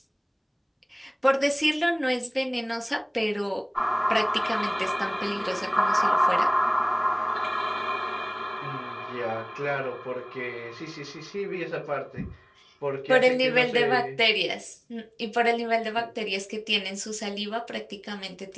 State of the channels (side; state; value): both; identical; correlation 1.00